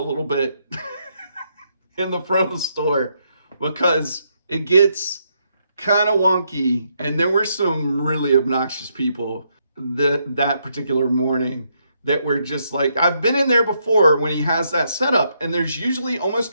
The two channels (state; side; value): inverted; both; correlation -0.76